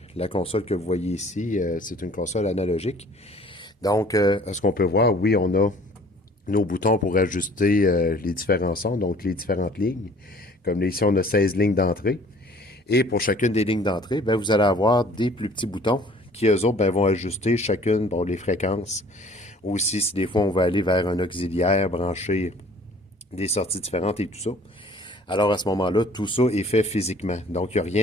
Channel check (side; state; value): both; normal; correlation 0.52